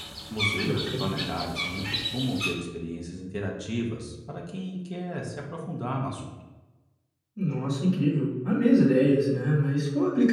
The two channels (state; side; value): identical; both; correlation 1.00